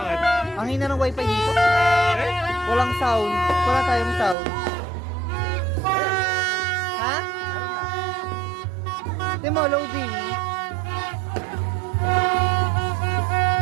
Ang hina ng wifi dito. Eh? Walang sound. Wala tayong sound. Ha? Di mo, loading.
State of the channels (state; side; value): drops out; left; at 4.4 s